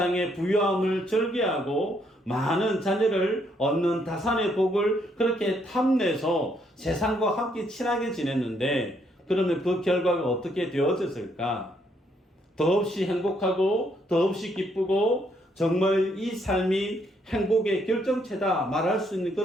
부유함을 즐겨하고 많은 자녀를 얻는 다산의 복을 그렇게 탐내서 세상과 함께 친하게 지냈는데, 그러면 그 결과가 어떻게 되어졌을까? 더없이 행복하고 더없이 기쁘고 정말 이 삶이 행복의 결정체다 말할 수 있는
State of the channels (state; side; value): normal; both; correlation 0.72